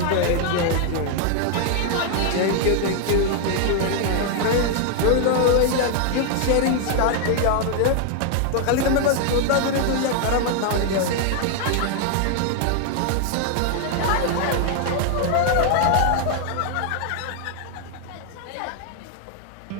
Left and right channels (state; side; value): different; both; correlation 0.00